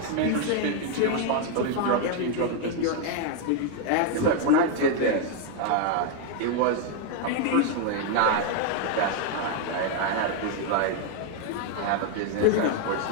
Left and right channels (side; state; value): both; different; correlation 0.00